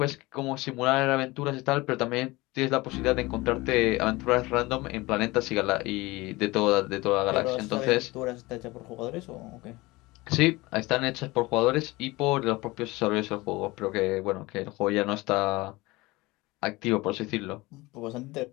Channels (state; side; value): quieter; right; 21.5 dB